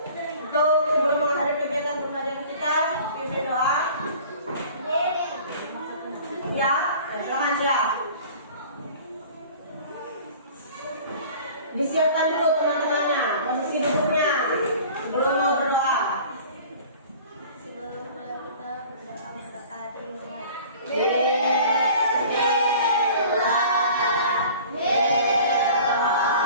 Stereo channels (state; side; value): inverted; both; correlation -0.45